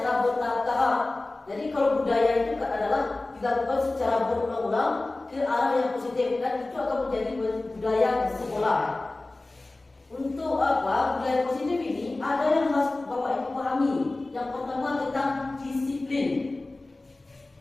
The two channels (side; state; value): right; quieter; 3.0 dB